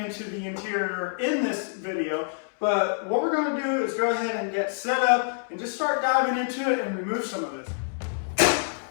the interior in this video. But what we're going to do is go ahead and get set up and just start diving into it and remove some of this.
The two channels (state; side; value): silent; right; 60 dB below the other